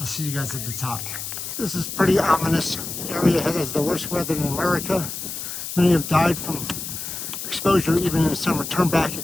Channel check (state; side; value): noise; left; hiss, 7 dB below the sound